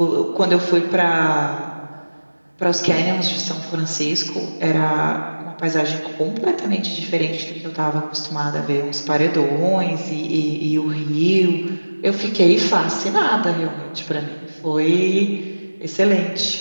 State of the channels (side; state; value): both; inverted; correlation -1.00